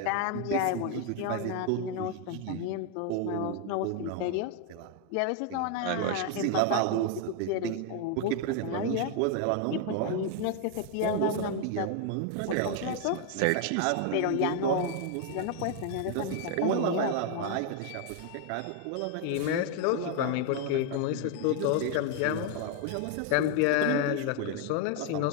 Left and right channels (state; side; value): different; both; correlation 0.01